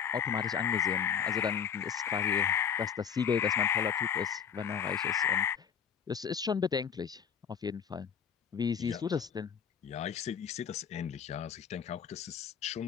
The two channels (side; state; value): right; quieter; 7.8 dB